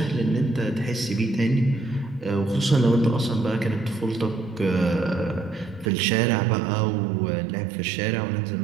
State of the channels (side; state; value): left; drops out; at 5.9 s